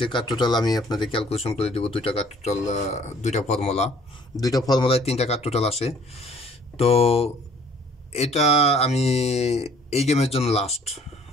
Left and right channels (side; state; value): both; normal; correlation 0.57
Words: কাট টোটাল আমি আপনাদের ক্যালকুলেশন করে দেবো। দুইটা কাট টোটাল, দুইটা ফর্মুলায় তিনটা কাট টোটাল আসে। তো এটা আমি এই গেমের জন্য লাস্ট